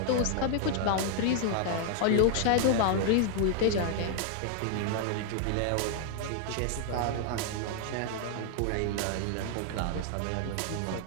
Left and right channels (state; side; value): different; both; correlation 0.00